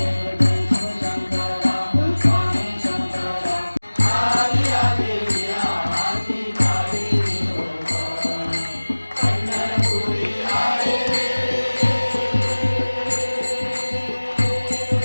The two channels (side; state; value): both; inverted; correlation -1.00